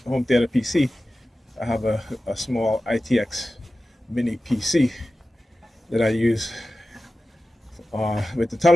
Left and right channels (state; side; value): normal; both; correlation 0.94